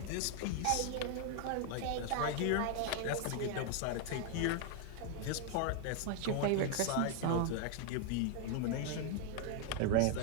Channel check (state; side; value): different; both; correlation 0.00